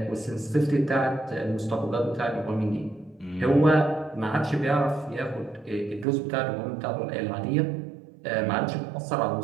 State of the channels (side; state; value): left; drops out; at 6.1 s